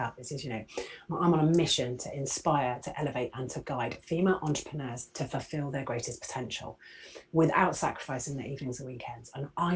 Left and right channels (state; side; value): identical; both; correlation 1.00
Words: it says, you know, I'm on a mission to inspire, to elevate, and to guide female entrepreneurs to fulfill their greatest potential without sacrificing their evenings and weekends. And I